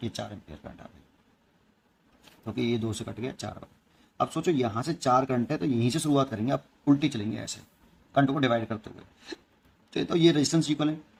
ये 4 एम्पीयर करंट आ गई, क्योंकि ये 2 से कट गया 4 बार। अब सोचो यहाँ से 4 करंट है, तो यहीं से शुरुआत करेंगे, अब उल्टी चलेंगे ऐसे करंट को डिवाइड करते हुए। तो ये रेजिस्टेंस इक्वल है,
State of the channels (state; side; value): identical; both; correlation 1.00